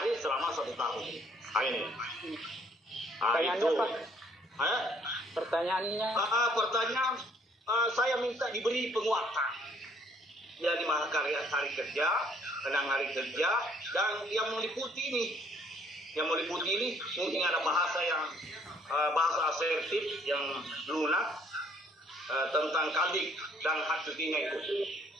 selama 1 tahun. Nah, ini. Pertanyaannya, Itu. Pak. Pertanyaannya. Pertanyaan, saya minta diberi penguatan. Ya, 5 hari kerja, 6 hari kerja, dan yang meliputi ini. Yang meliputi ini mungkin ada bahasa asertif yang lunak tentang kaldik dan hak cutinya itu.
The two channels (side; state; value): both; normal; correlation 0.62